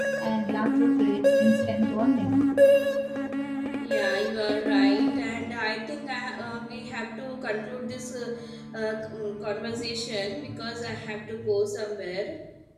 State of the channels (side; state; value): both; identical; correlation 1.00